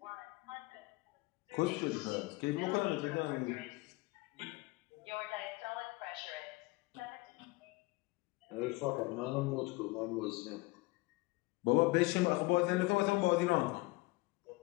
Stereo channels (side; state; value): right; quieter; 23.3 dB